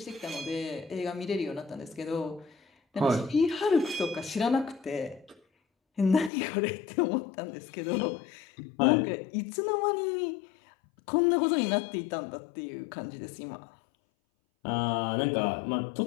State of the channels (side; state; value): right; drops out; at 6.3 s